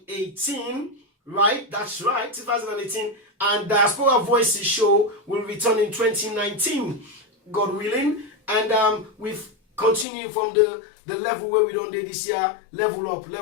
right? That's right, 2018. And Diaspora Voices show will return in 2019, God willing. And we've continued from the level where we done this year, level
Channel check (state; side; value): drops out; right; at 10.1 s